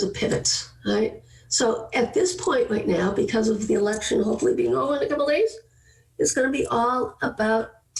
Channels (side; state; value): both; identical; correlation 1.00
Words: of pivots, right? So at this point right now, because of the election hopefully being over in a couple of days, it's going to be all about